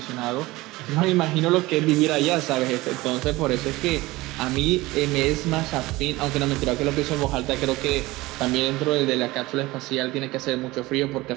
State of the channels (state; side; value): quieter; left; 20.0 dB